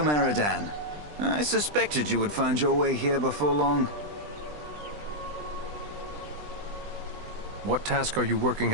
Eredan. I suspected you would find your way here before long. What task are you working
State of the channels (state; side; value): late; left; 20 ms